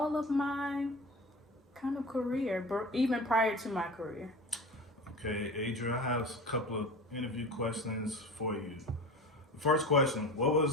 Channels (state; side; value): normal; both; correlation 0.33